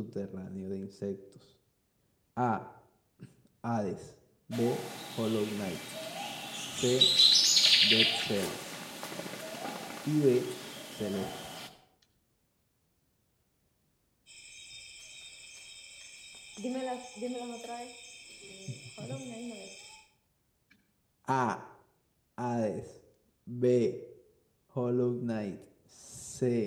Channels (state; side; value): identical; both; correlation 1.00